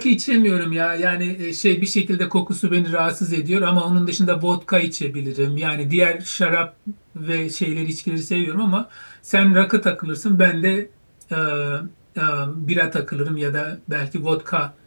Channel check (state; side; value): inverted; both; correlation -1.00